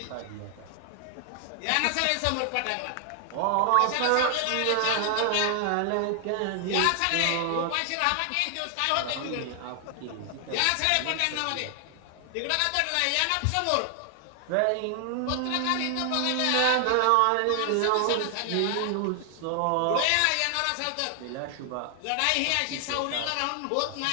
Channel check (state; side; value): different; both; correlation 0.00